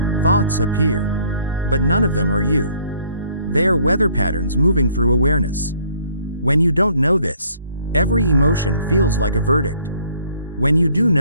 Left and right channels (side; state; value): both; inverted; correlation -0.61